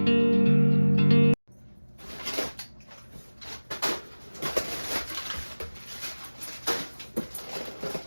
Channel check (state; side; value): inverted; both; correlation -1.00